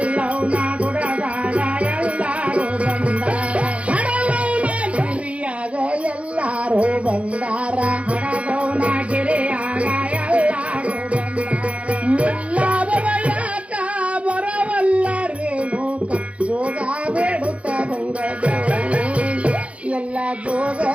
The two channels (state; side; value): late; left; 0.063 ms